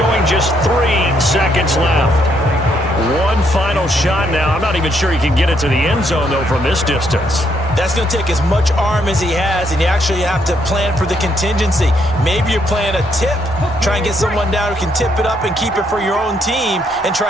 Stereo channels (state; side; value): normal; both; correlation 0.73